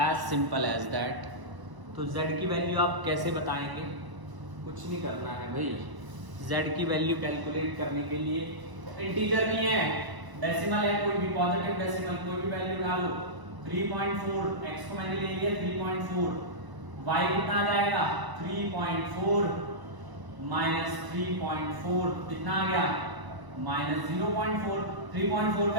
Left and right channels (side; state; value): left; late; 1.0 ms